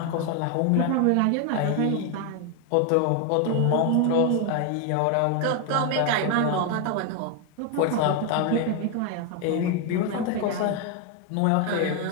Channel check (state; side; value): different; both; correlation 0.01